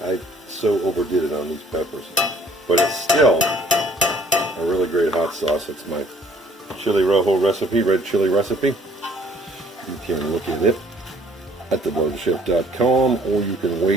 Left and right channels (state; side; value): normal; both; correlation 0.58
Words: so overdid it on these peppers, but it's still a really great hot sauce. It's my chili rojo recipe, red chili recipe. You can look at it at thebloatedchef.com, or you can